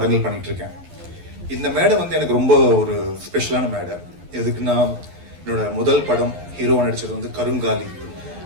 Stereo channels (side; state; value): left; late; 11 ms